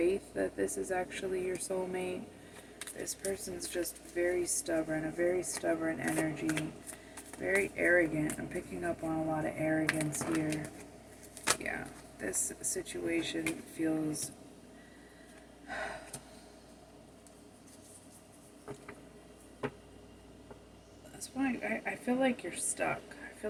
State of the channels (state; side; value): identical; both; correlation 1.00